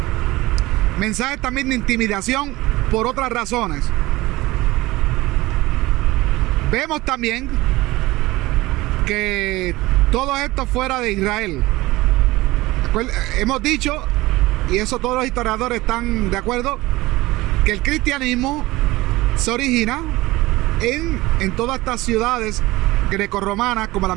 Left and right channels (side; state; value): left; quieter; 19.5 dB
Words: mensajes también de intimidación por otras razones. Vemos también que todo esto fuera de Israel. Hemos dicho, y eso todos los historiadores están de acuerdo, que el cristianismo se origina en todas estas ciudades grecorromanas, como